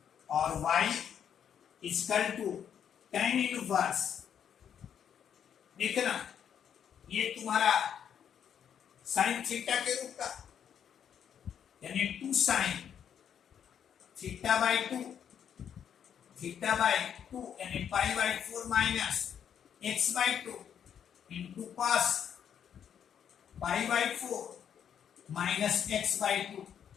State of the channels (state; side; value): quieter; right; 8.5 dB